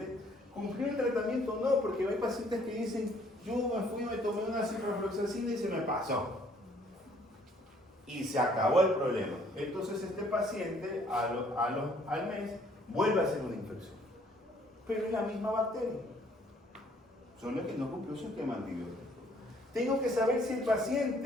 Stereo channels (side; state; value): both; normal; correlation 0.62